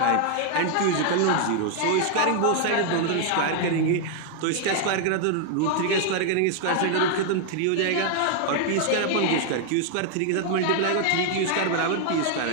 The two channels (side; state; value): both; different; correlation 0.00